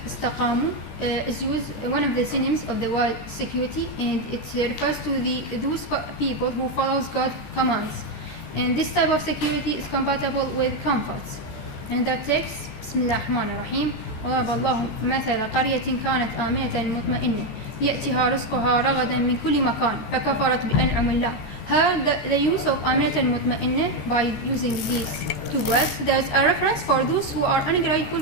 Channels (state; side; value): late; right; 14 ms